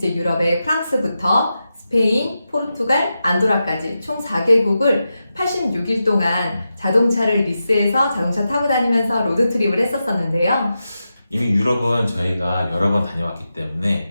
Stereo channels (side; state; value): both; inverted; correlation -0.90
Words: 유럽의 프랑스부터 스페인, 포르투갈, 안도라까지 총 4개국을 86일 동안 자동차를 리스해서 자동차 타고 다니면서 로드트립을 했었었는데요. 이미 유럽은 저희가 여러 번 다녀왔기 때문에